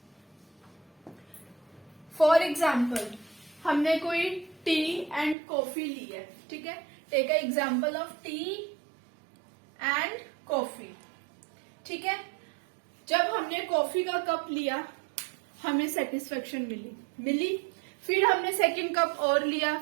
फॉर एग्जाम्पल, हमने कोई टी एंड कॉफी ली है। ठीक है, take a example of tea and coffee. ठीक है, जब हमने कॉफी का कप लिया हमें सेटिस्फेक्शन मिली, फिर हमने सेकंड कप और लिया,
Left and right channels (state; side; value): drops out; left; at 5.4 s